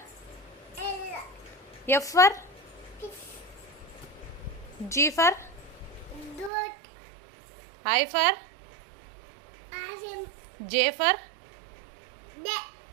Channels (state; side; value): drops out; left; at 6.5 s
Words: F for G for I for J for